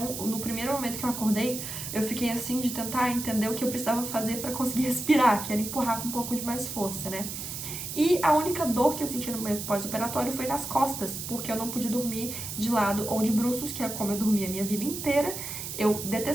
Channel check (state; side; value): noise; right; hiss, 7 dB below the sound